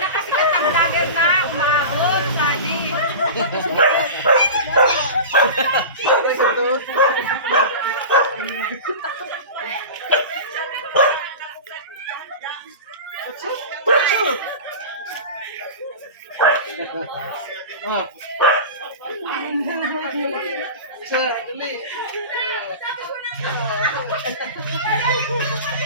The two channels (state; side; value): inverted; both; correlation -0.30